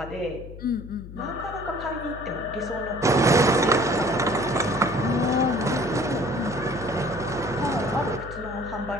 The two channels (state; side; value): noise; left; hum, 13 dB below the sound